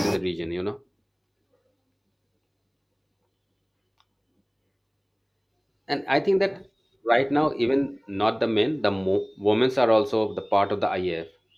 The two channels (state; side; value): identical; both; correlation 1.00